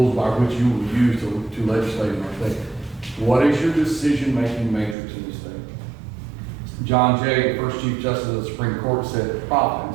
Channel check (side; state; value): left; drops out; at 5.0 s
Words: by which you will use to legislate in our state? What is your decision-making matrix in the state? John Jay, the first Chief Justice of the Supreme Court, said